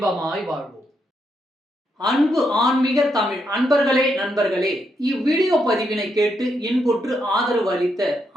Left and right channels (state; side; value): normal; both; correlation 0.79